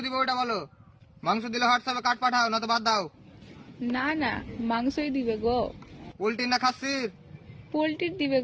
দিবে ওইটা বলো। মাংস দিলে হোয়াটসঅ্যাপে কাট পাঠাও, না তো বাদ দাও। না না, মাংসই দিবে গো। পোল্ট্রি না খাসির? পোল্ট্রির দিবে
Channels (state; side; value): identical; both; correlation 1.00